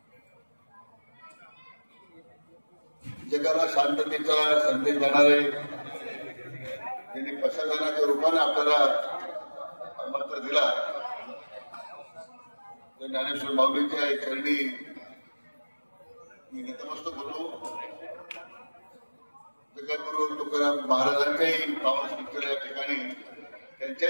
जगाला शांततेचा संदेश देणारे त्यांनी प्रशासनाच्या रूपाने आपल्याला मंत्र दिला। तर ज्ञानेश्वर माऊलींच्या चरणी मी नतमस्तक होतो। जगद्गुरु तुकाराम महाराजांच्याही पावन स्मृतीला या ठिकाणी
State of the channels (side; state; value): both; inverted; correlation -1.00